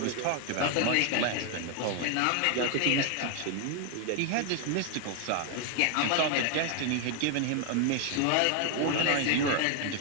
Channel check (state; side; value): different; both; correlation 0.00